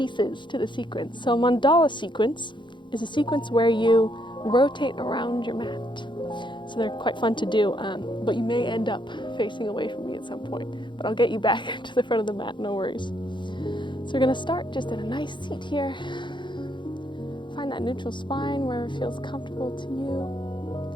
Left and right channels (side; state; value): right; late; 0.23 ms